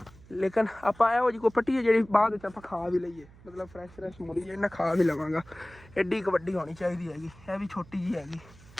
ਲੇਕਿਨ ਆਪਾਂ ਇਹੋ ਜਿਹੀ ਕੋਈ ਪੱਟੀ ਹੈ ਜਿਹੜੀ ਬਾਅਦ ਵਿੱਚ ਆਪਾਂ ਖਾ ਵੀ ਲਈਏ ਮਤਲਬ ਫਰੈਸ਼ ਮੂਲੀ ਜਿਹੜੀ ਨਾ ਖਾ ਵੀ ਲਵਾਂਗਾ ਐਡੀ ਕੁ ਵੱਡੀ ਹੋਣੀ ਚਾਹੀਦੀ ਹੈਗੀ ਇਹ ਵੀ ਛੋਟੀ ਜਿਹੀ ਹੈਗੀ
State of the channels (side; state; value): right; noise; hum, 23 dB below the sound